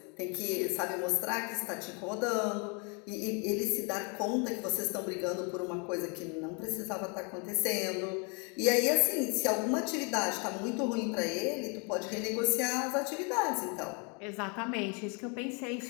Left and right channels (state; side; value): quieter; right; 34.1 dB